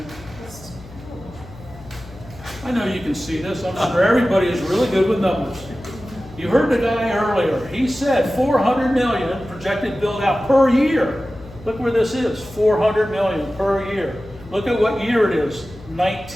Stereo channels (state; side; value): noise; left; hum, 19 dB below the sound